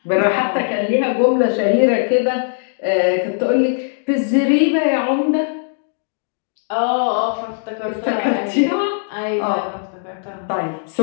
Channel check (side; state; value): right; silent; digital silence